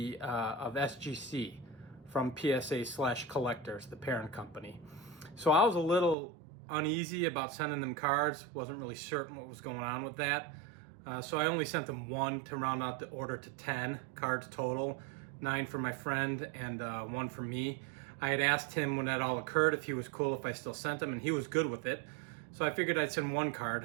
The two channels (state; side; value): drops out; left; at 6.2 s